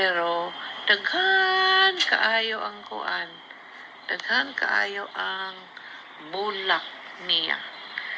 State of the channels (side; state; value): both; identical; correlation 1.00